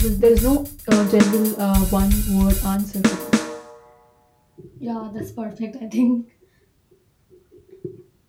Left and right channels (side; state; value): both; identical; correlation 1.00